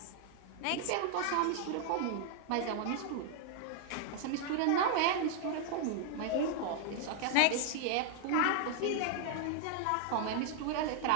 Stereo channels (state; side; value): different; both; correlation 0.00